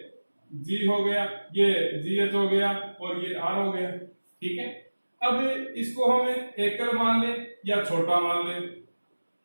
जी हो गया, ये जी एच हो गया और ये आर हो गया। ठीक है, अब इसको हमें एकल मान ले या छोटा मान ले,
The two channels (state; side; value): inverted; both; correlation -1.00